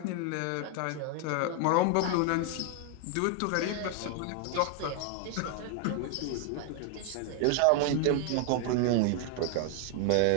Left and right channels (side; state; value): both; different; correlation 0.00